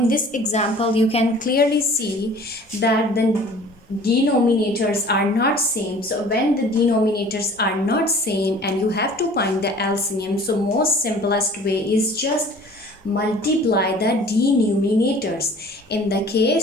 you can clearly see that the denominators are not same. So when the denominators are not same and you have to find the LCM, so most simplest way is just multiply the denominators in the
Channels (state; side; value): normal; both; correlation 0.48